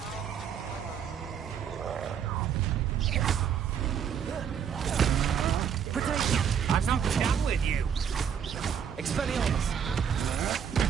Potato! I'm not done with you. Expelliarmus!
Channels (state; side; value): quieter; left; 7.9 dB